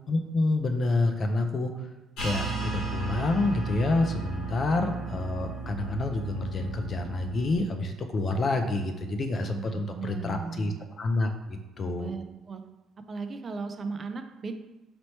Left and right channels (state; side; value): normal; both; correlation 0.80